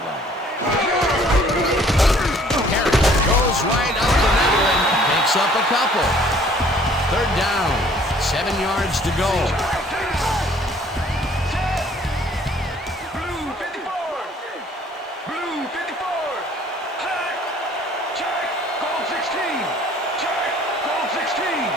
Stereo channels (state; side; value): normal; both; correlation 0.56